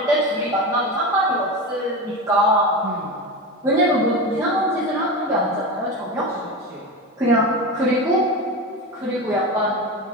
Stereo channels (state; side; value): normal; both; correlation 0.23